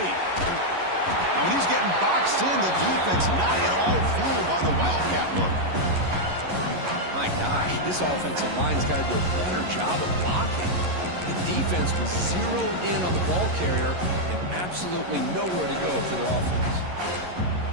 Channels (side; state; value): left; late; 11 ms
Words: when he's getting boxed in, the defense not at all fooled by the Wildcat look. My gosh, this offensive line's got to do a better job of blocking. The defense was zeroed in on the ball carrier and absolutely nowhere to go for their offense.